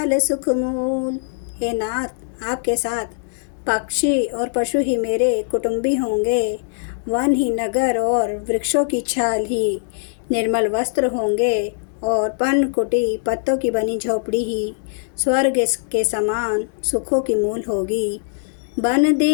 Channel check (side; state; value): right; silent; digital silence